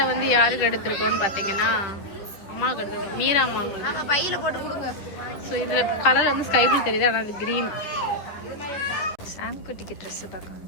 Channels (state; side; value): late; right; 11 ms